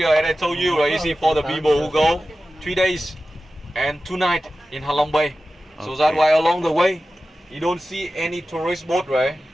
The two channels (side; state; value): both; normal; correlation 0.94